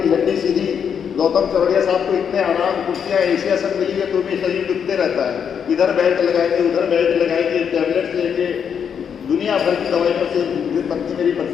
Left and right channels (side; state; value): right; quieter; 7.5 dB